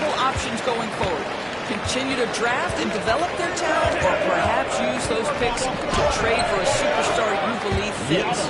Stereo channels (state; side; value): identical; both; correlation 1.00